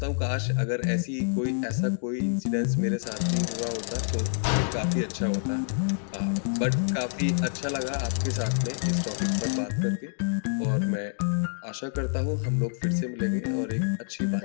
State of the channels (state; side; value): silent; right; digital silence